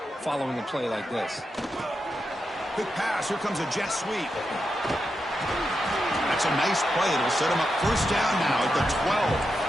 following a play like this. Quick pass. Here comes a jet sweep. That's a nice play. It'll set him up first down now at the 12.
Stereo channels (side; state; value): both; normal; correlation 0.87